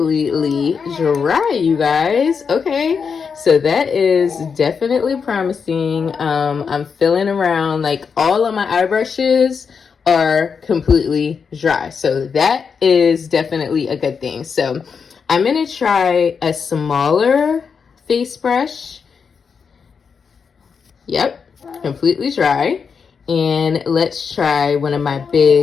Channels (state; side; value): quieter; right; 6.0 dB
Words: dry, you guys. Okay, so that is definitely promising. I'm feeling around, like, all of my eye brushes are completely dry, so that is definitely a good thing. So I'm gonna try a smaller face brush. Yep, completely dry. And let's try one of my